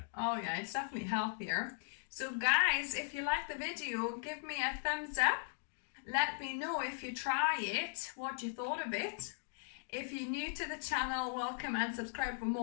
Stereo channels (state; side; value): silent; right; digital silence